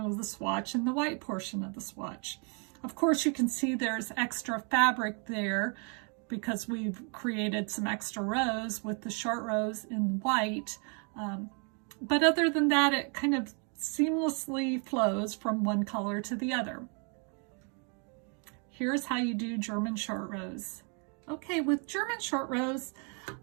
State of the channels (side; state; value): left; quieter; 37.4 dB